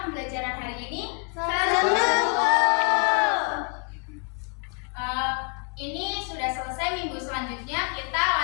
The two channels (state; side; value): quieter; right; 36.5 dB